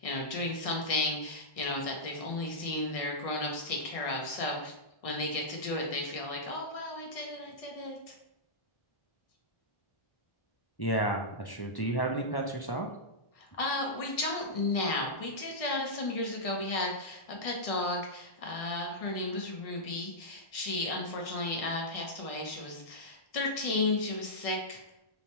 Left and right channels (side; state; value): right; late; 1.6 ms